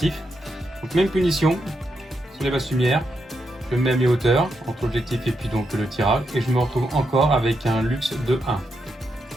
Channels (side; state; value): both; normal; correlation 0.82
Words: Donc même punition sur les basses lumières, je mets mes hauteurs entre l'objectif et puis donc le tirage et je me retrouve encore avec un luxe de